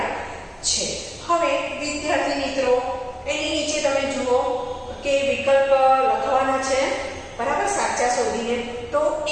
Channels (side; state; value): both; identical; correlation 1.00